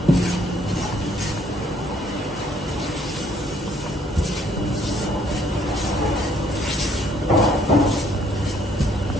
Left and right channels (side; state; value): both; normal; correlation 0.65